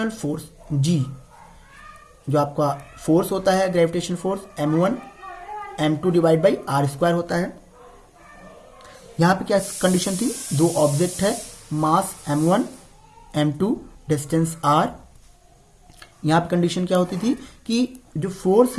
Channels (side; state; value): both; identical; correlation 1.00